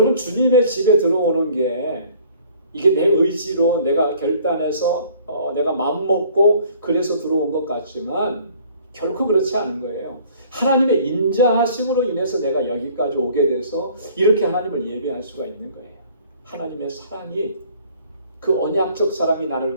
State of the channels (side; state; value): both; inverted; correlation -0.55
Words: 주님의 집에 들어오는 게 이게 내 의지로 내가 결단해서 내가 마음먹고 그래서 들어온 것 같지만 결코 그렇지 않은 거예요. 하나님의 인자하심으로 인해서 내가 여기까지 오게 돼서 이렇게 하나님을 예배할 수가 있는 거예요. 하나님의 사랑이, 그 언약적 사랑이